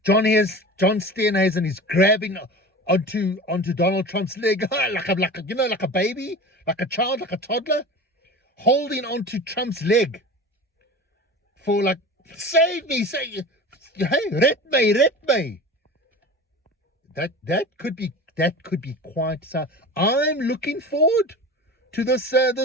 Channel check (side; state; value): both; normal; correlation 0.34